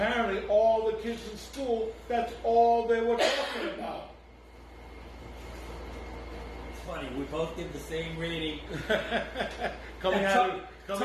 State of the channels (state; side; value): identical; both; correlation 1.00